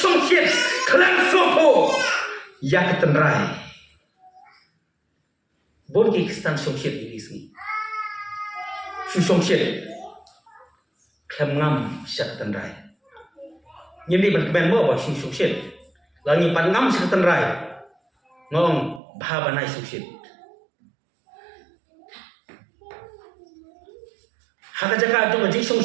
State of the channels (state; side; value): drops out; left; at 19.0 s